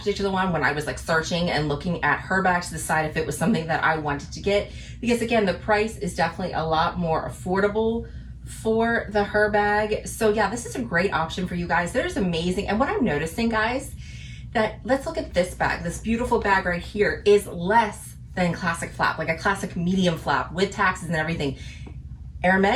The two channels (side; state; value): both; identical; correlation 1.00